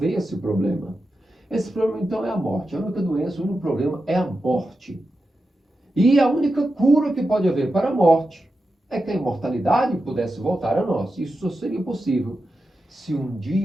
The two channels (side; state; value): both; normal; correlation 0.90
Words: esse problema. Esse problema, então, é a morte. A única doença, o único problema é a morte. E a única cura que pode haver para a morte é que a imortalidade pudesse voltar a nós. Isso só seria possível se um